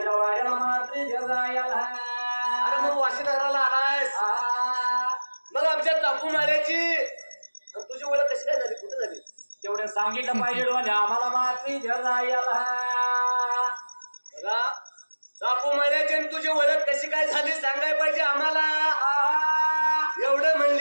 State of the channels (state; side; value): inverted; both; correlation -1.00